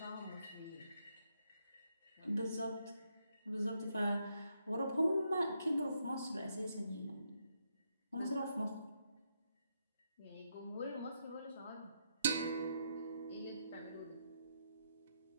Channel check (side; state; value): both; inverted; correlation -0.79